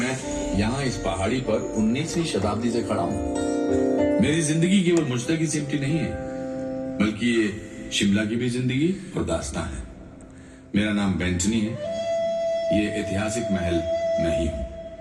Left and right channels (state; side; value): identical; both; correlation 1.00